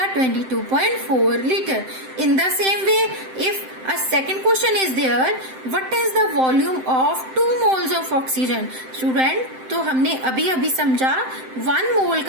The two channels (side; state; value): left; late; 7.7 ms